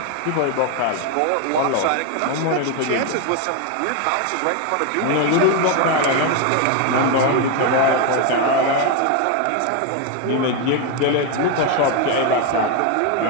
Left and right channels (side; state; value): both; different; correlation 0.02